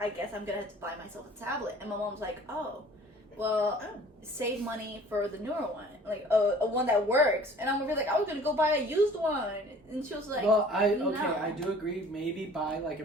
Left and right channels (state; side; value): normal; both; correlation 0.49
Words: guess I'm gonna have to buy myself a tablet. And my mom's like, oh, well, save money for the newer one, like a one that works. And I'm gonna be like, I was gonna go buy a used one, and she was like, well, I no. do agree. Maybe buy like a